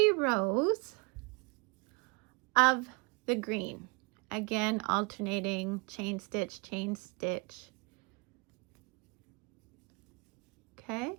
rows of the green. Again, alternating chain stitch, chain stitch. Okay,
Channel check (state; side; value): quieter; left; 30.3 dB